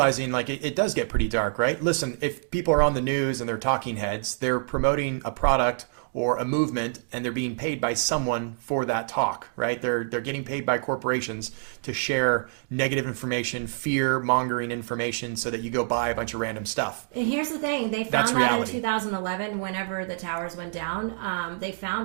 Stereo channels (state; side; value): silent; left; digital silence